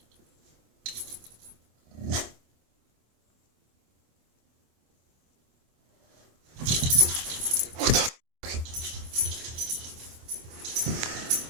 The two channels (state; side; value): late; left; 25 ms